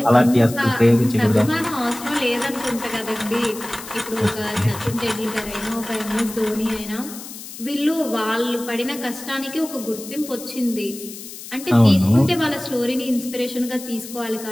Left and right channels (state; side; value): noise; left; hiss, 13 dB below the sound